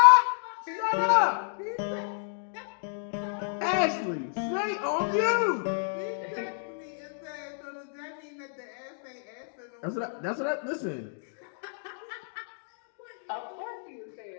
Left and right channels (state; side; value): silent; right; digital silence